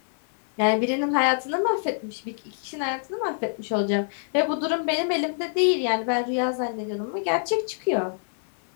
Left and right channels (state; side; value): silent; right; 61 dB below the other